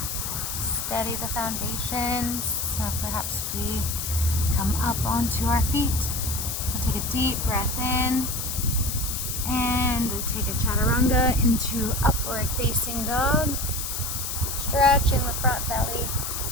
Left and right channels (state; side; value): noise; left; hiss, 3 dB below the sound